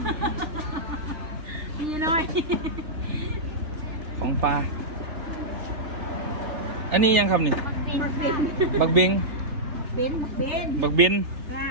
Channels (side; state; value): left; late; 3.3 ms